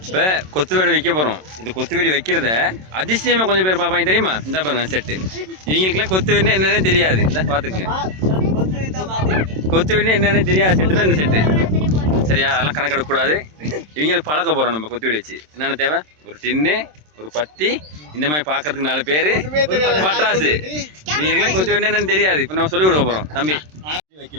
கொத்து வீடு வைக்க போகிறோம். இந்த கொத்து வீடு வைக்கிறத அதிசயமாக கொஞ்சம் பேர் பார்ப்பாங்க தெரியுமா? இந்த பாருங்க செட்டு. இவங்களுக்குலாம் கொத்து வீடுனா என்னென்னு தெரியாது. இந்த பார்த்துக்குங்க, கொத்து வீடுனா என்னென்னு தெரியாது. செட்டு தான் இந்த செட்டு. சரியா? அதெல்லாம் கணக்கெடுக்கக்கூடாது. இவங்களுக்கு பழக்க போகிறோம் நம்ம கொத்து வீடு வச்சு. என்னென்ன தேவை? ஒரு டின்னு, ஒரு பத்தி, இந்த மாதிரி பார்க்கறதுக்கு 4 பேர், பட்டாசு. இவங்களுக்குலாம் கொத்து வீடுனா என்னென்னு தெரியாது. இப்போ நம்ம சொல்லிக் கொடுக்க போகிறோம். தம்பி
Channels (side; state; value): left; late; 27 ms